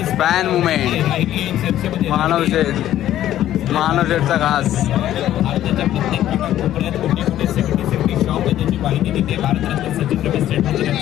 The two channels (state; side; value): quieter; right; 12.5 dB